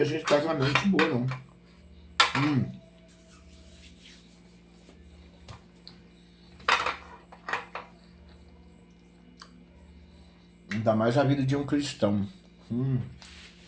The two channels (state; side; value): identical; both; correlation 1.00